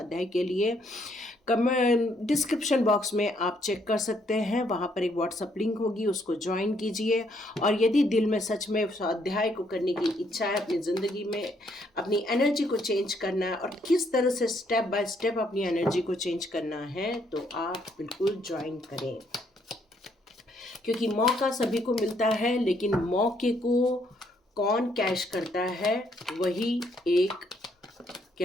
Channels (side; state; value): both; normal; correlation 0.71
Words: के लिए, डिस्क्रिप्शन बॉक्स में आप चेक कर सकते हैं, वहाँ पर एक व्हाट्सअप लिंक होगी, उसको ज्वाइन कीजिए। और यदि दिल में सच में स्वाध्याय को करने की इच्छा है, अपनी ज़िंदगी में अपनी एनर्जी को चेंज करना है और किस तरह से स्टेप बाय स्टेप अपनी एनर्जी को चेंज करना है, तो आप बिल्कुल ज्वाइन करें, क्योंकि मौका सभी को मिलता है, लेकिन मौके को कौन कैश करता है, वही एक,